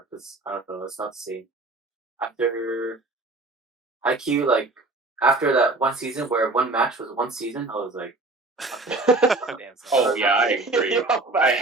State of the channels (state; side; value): quieter; left; 3.2 dB